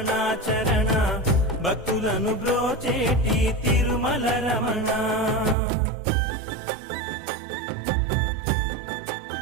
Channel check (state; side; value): drops out; left; at 5.6 s